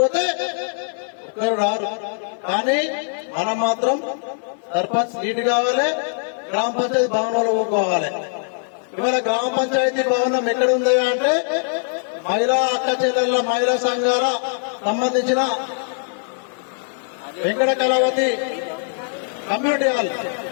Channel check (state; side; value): silent; right; digital silence